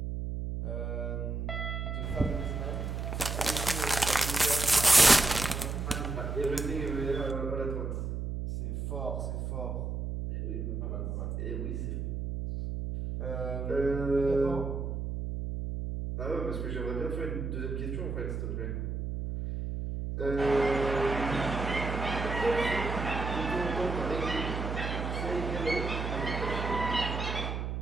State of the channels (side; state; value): right; noise; hum, 3 dB below the sound